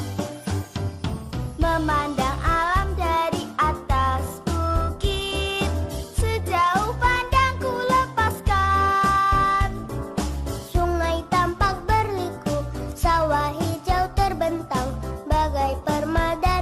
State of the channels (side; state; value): both; identical; correlation 1.00